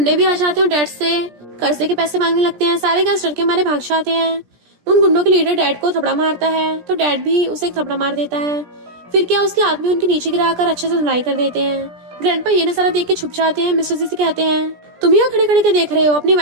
भी आ जाते हैं और डैड से कर्जे के पैसे मांगने लगते हैं। सारे गेस्ट डर के मारे भाग जाते हैं। उन गुंडों के लीडर डैड को थपड़ा मारता है तो डैड भी उसे एक थपड़ा मार देता है। फिर क्या उसके आदमी उनके नीचे गिराकर अच्छे से धुलाई कर देते हैं। ग्रैंडपा ये नजारा देख के छुप जाते हैं। मिस्टर जी से कहते हैं तुम यहाँ खड़े खड़े के देख रहे हो, अपनी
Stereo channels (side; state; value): left; late; 17 ms